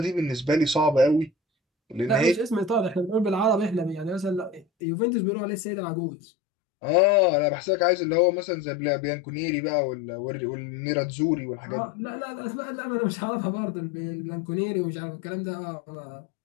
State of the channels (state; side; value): drops out; right; at 4.7 s